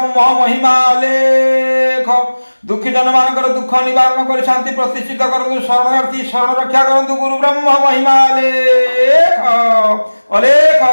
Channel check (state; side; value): inverted; both; correlation -1.00